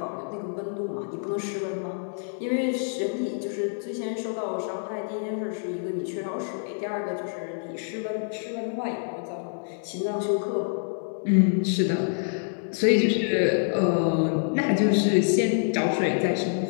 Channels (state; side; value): silent; right; digital silence